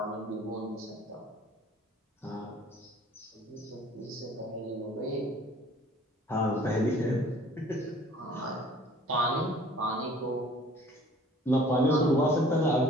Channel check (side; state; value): both; normal; correlation 0.51